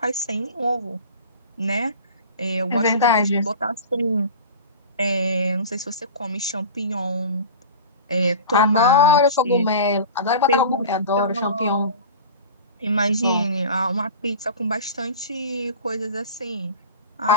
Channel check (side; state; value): both; inverted; correlation -0.35